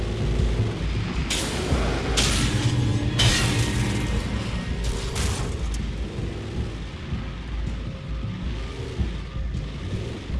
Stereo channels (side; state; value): both; identical; correlation 1.00